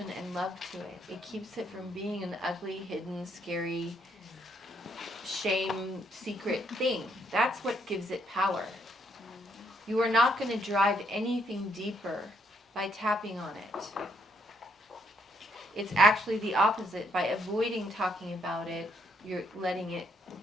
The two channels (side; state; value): both; normal; correlation 0.72